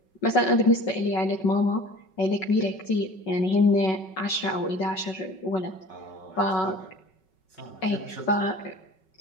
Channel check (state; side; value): late; right; 5.3 ms